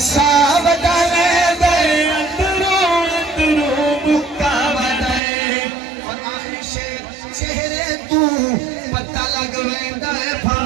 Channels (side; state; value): left; drops out; at 5.2 s